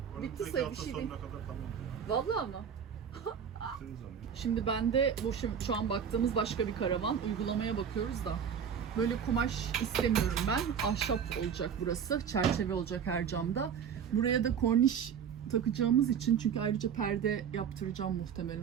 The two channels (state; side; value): quieter; left; 7.6 dB